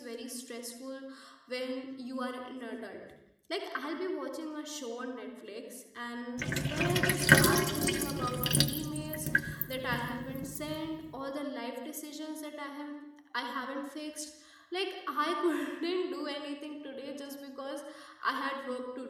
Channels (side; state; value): both; identical; correlation 1.00